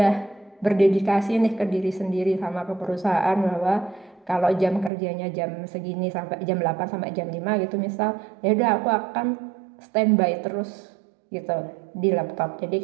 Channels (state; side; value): drops out; left; at 4.9 s